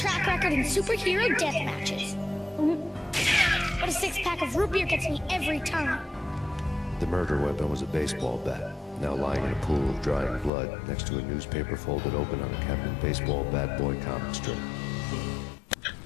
record in superhero death matches. But a 6-pack of root beer gets me every time. The murder weapon was a baseball bat, now lying in a pool of drying blood next to a newspaper folded open on a Captain Baseball Bat Boy comic strip.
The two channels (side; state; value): right; drops out; at 10.5 s